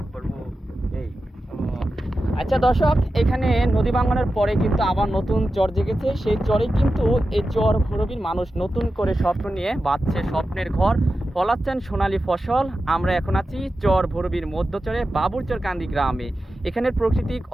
করবো এই। আচ্ছা দর্শক, এখানে নদী ভাঙনের পরে কিন্তু আবার নতুন চর জেগেছে। সেই চরে কিন্তু এই চর ভৈরবীর মানুষ নতুন করে স্বপ্ন নিয়ে বাঁধছে স্বপ্নের ঘর, ফলাচ্ছেন সোনালী ফসল। আমরা এখন আছি চর ভৈরবীর মধ্য চরে বাবুরচর কান্দি গ্রামে। এখানের প্রাকৃতিক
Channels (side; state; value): both; normal; correlation 0.92